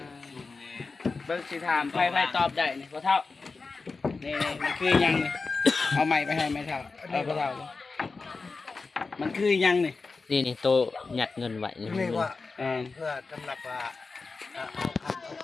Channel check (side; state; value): right; quieter; 4.2 dB